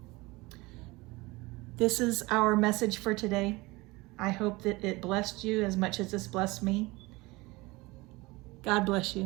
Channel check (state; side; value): quieter; left; 22.6 dB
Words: This is our message for today. I hope that it blessed you as much as it's blessed me. God bless